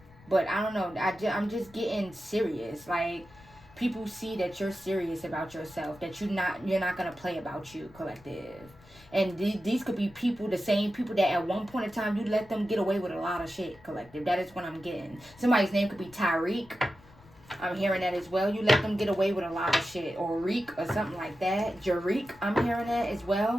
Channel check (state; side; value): noise; left; rumble, 24 dB below the sound